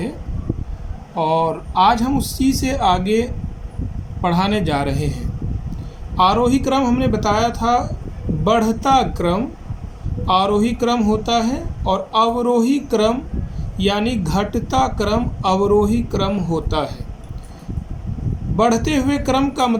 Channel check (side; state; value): both; identical; correlation 1.00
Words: और आज हम उसी से आगे पढ़ाने जा रहे हैं। आरोही क्रम हमने बताया था बढ़ता क्रम आरोही क्रम होता है और अवरोही क्रम यानी घटता क्रम अवरोही क्रम होता है। बढ़ते हुए क्रम का